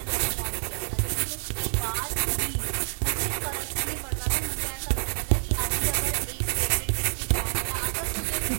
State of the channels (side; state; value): left; silent; digital silence